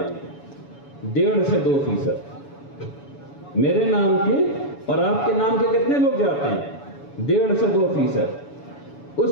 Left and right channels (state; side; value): late; right; 7.0 ms